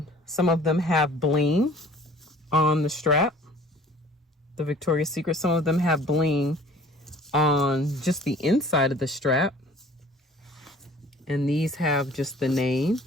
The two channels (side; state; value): both; normal; correlation 0.50